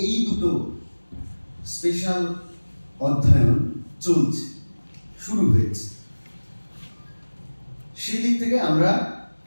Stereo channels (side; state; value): both; inverted; correlation -1.00